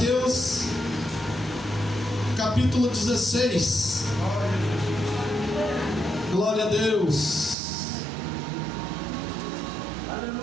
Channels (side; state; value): left; drops out; at 7.6 s